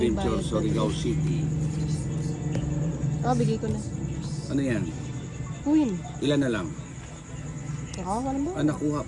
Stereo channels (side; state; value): both; identical; correlation 1.00